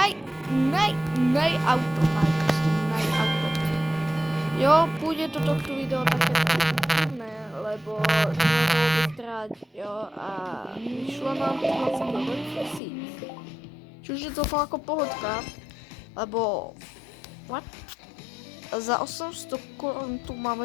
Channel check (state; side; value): drops out; right; at 12.8 s